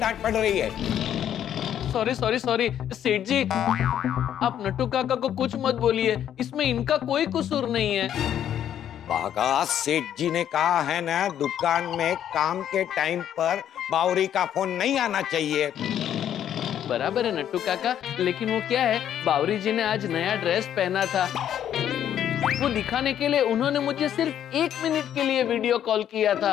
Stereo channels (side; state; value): right; quieter; 10.2 dB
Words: पड़ रही है। सॉरी सेठ जी, आप नट्टू काका को कुछ मत बोलिए, इसमें इनका कोई कसूर नहीं है। बागा, सेठ जी ने कहा है ना, दुकान में काम के टाइम पर बावरी का फोन नहीं आना चाहिए। बराबर है नट्टू काका, लेकिन वो क्या है, बावरी जी ने आज नया ड्रेस पहना था, वो दिखाने के लिए उन्होंने मुझे सिर्फ 1 मिनट के लिए वीडियो कॉल किया